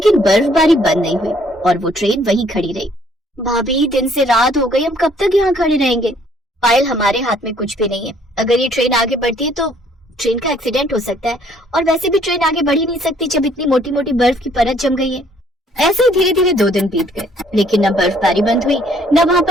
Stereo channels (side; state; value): both; normal; correlation 0.63